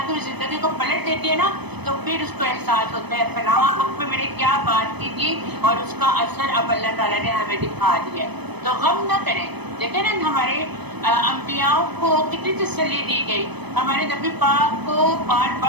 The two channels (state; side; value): late; left; 0.99 ms